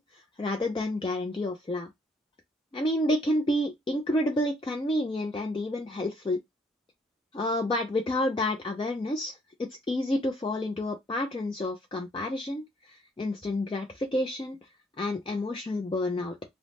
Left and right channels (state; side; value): normal; both; correlation 0.66